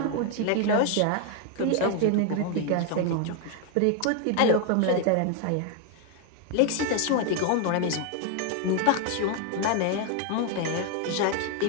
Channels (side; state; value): both; different; correlation 0.00